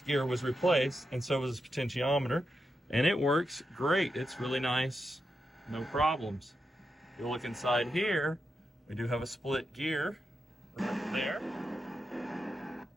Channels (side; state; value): both; normal; correlation 0.87